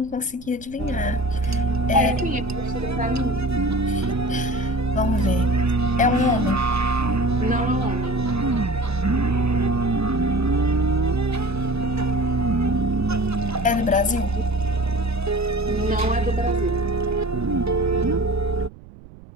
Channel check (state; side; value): noise; right; rumble, 20 dB below the sound